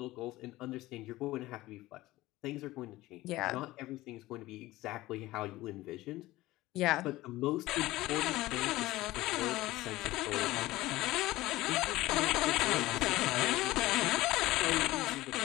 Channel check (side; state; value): right; quieter; 17.9 dB